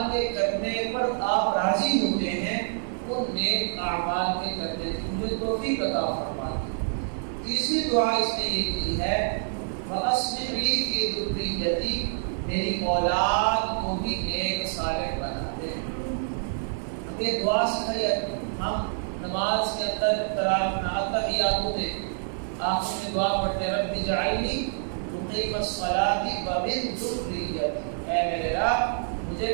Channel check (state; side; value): silent; left; 60 dB below the other